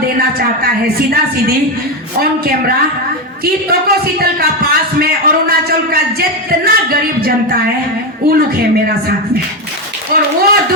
चाहता है सीधा सीधी ऑन कैमरा कि तोकोसीतल का पास में अरुणाचल का जितना गरीब जनता है वो लोग है मेरा साथ में, और वो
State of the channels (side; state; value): both; normal; correlation 0.11